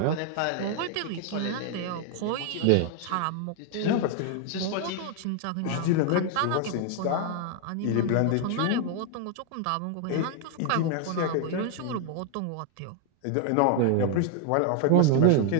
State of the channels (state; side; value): different; both; correlation 0.00